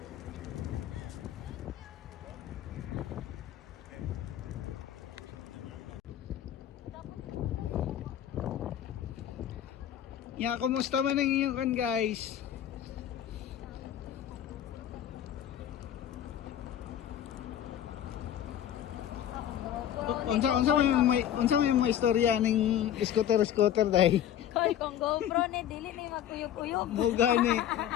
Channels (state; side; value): quieter; right; 10.7 dB